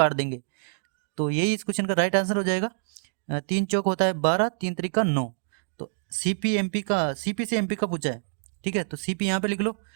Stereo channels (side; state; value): left; silent; digital silence